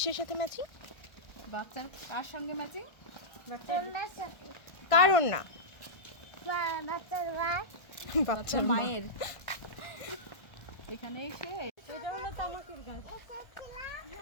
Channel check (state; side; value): late; right; 1.3 ms